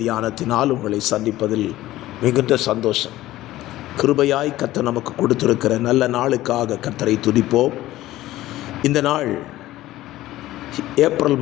தியானத்தினால் உங்களை சந்திப்பதில் மிகுந்த சந்தோஷம். கிருபையாய் கர்த்தர் நமக்கு கொடுத்திருக்கிற நல்ல நாளுக்காக கர்த்தரை துதிப்போம். இந்த நாள் ஏப்ரல்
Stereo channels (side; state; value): right; quieter; 15.7 dB